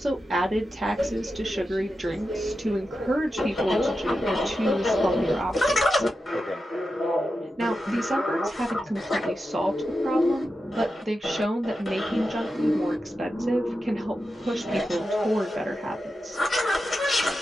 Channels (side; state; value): both; normal; correlation 0.90